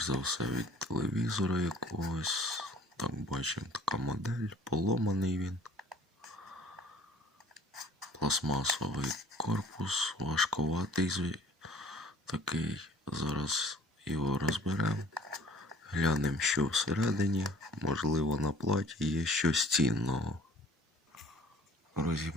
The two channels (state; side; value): normal; both; correlation 0.52